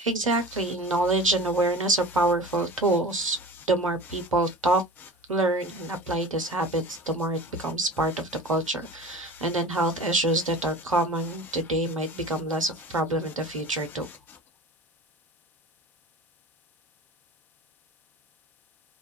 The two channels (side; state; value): both; normal; correlation 0.36